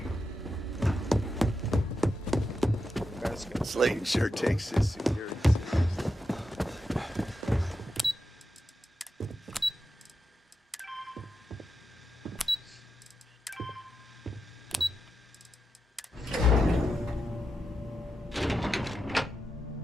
Slayton sure takes his security.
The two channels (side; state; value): both; normal; correlation 0.87